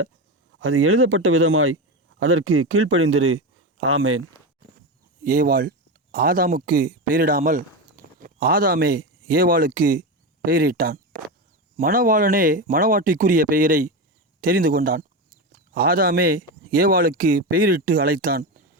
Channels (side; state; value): both; normal; correlation 0.17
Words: அது எழுதப்பட்ட விதமாய் அதற்கு கீழ்ப்படிந்திரு. ஆமேன். ஏவாள் ஆதாமுக்கு பெயரிடாமல் ஆதாமே ஏவாளுக்கு பெயரிட்டான். மணவாளனே மணவாட்டிக்குரிய பெயரை தெரிந்து கொண்டான். ஆதாமே ஏவாளுக்கு பெயரிட்டு அழைத்தான்.